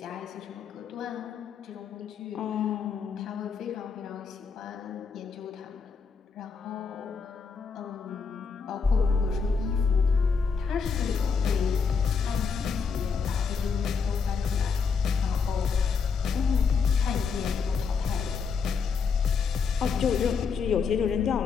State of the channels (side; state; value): right; quieter; 5.5 dB